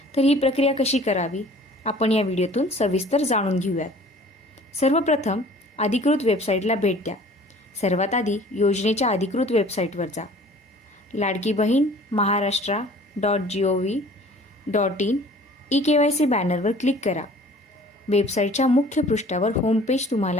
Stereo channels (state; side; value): normal; both; correlation 0.49